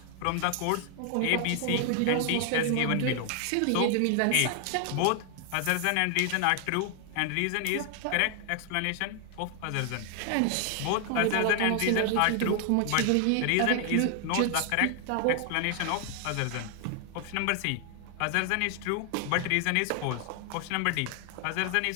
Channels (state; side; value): different; both; correlation 0.00